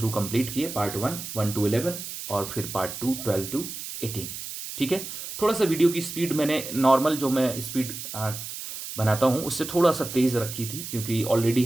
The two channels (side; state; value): right; noise; hiss, 8 dB below the sound